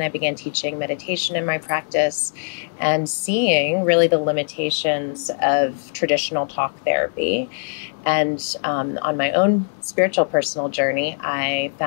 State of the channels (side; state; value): right; silent; digital silence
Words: I began teaching meditation in my practice and seeing really the limitations of traditional talk therapy. And on my own spiritual personal journey, I